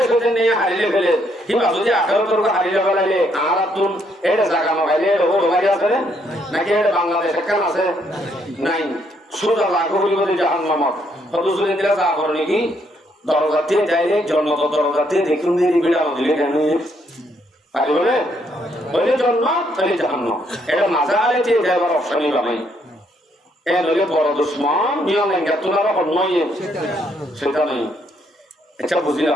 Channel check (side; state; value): both; normal; correlation 0.72